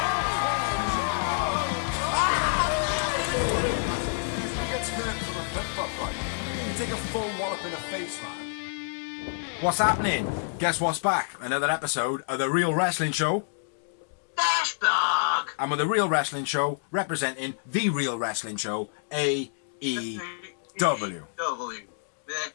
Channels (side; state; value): right; silent; digital silence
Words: Who gets hurt from a flip-flop fight? You take a full wallop in the face, man. What's happening? Guess what's back? Another episode of The Real Wrestling Show. Dash Dog! And with The Real Wrestling Show representing The Real Wrestling Show, AEW. The